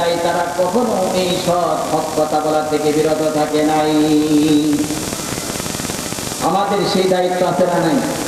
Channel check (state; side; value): identical; both; correlation 1.00